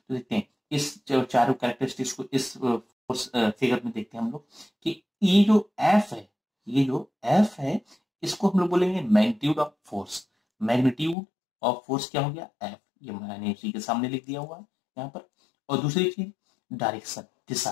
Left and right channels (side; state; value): right; drops out; at 11.2 s